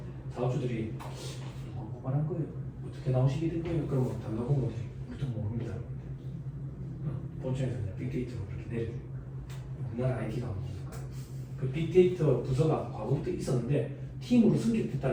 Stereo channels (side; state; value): both; identical; correlation 1.00